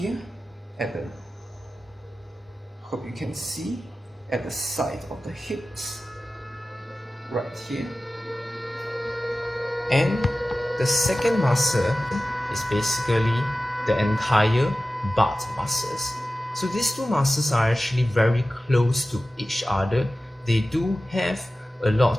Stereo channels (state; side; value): normal; both; correlation 0.95